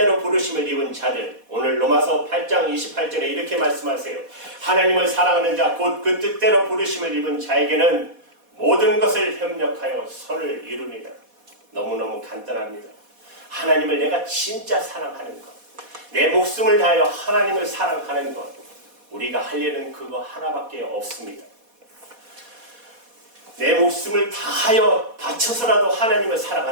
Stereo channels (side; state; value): left; late; 4.1 ms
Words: 부르심을 입은 자들, 오늘 로마서 8장 28절에 이렇게 말씀하세요. 하나님을 사랑하는 자, 곧 그 뜻대로 부르심을 입은 자에게는 모든 것을 협력하여 선을 이룹니다. 너무너무 간단합니다. 하나님을 내가 진짜 사랑하는 것, 내 목숨을 다하여 하나님을 사랑하는 것, 우리가 할 일은 그거 하나밖에 없습니다. 내 목숨을 다하여 바쳐서라도 하나님을